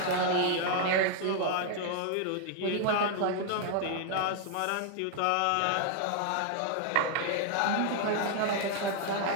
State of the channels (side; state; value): both; different; correlation 0.00